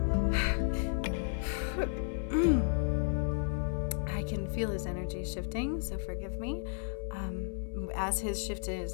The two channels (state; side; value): silent; right; 56 dB below the other